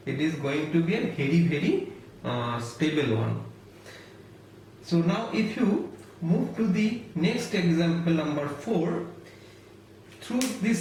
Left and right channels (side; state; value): both; identical; correlation 1.00